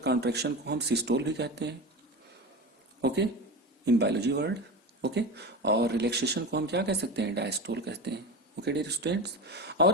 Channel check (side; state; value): both; normal; correlation 0.26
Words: को हम सिस्टोल भी कहते हैं, okay, in biology word. Okay, और रिलैक्सेशन को हम क्या कह सकते हैं, डायस्टोल कहते हैं। ओके डियर स्टूडेंट्स,